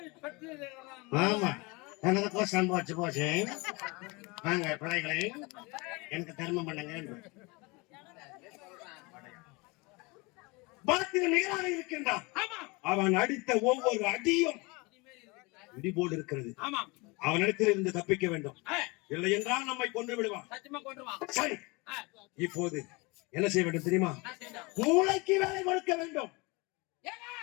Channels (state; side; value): quieter; right; 26.5 dB